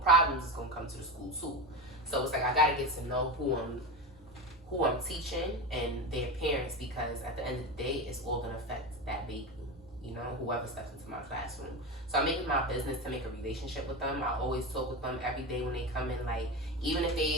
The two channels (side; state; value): both; normal; correlation 0.21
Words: problems is gonna come to the school too. So it's like I gotta get to know who I'm teaching and their parents, because at the end of the day, it's all gonna affect that baby. you know, whoever steps into my classroom. So I make it my business to make a relationship with them. I always talk with them every day when they come in. Like, even if